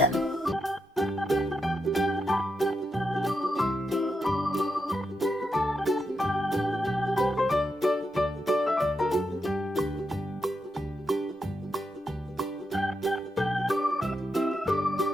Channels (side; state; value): both; normal; correlation 0.84